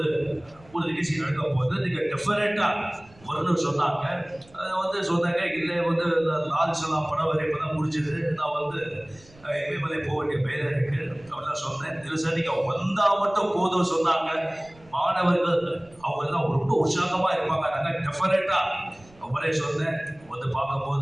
நிகழ்ச்சி நடக்கும் போது நீங்கள் டெஃபரெண்டா வரணும்னு சொன்னாங்க. அதை சொன்னாங்க, இல்லை லால் சலாம் படம் வரை இப்போ தான் முடிஞ்சது, நான் இமயமலை போக வேண்டிய வேலை இருக்கு அப்படிலாம் சொன்னேன். இல்லை சார், நீங்கள் வந்தால் மட்டும் போதும் சொன்னாங்க. மாணவர்கள் அவங்க எல்லாம் ரொம்ப உற்சாகமா இருப்பாங்க. நாங்கள் டெஃபரெண்டா அவரே சொன்னேன்,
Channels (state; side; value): noise; right; rumble, 26 dB below the sound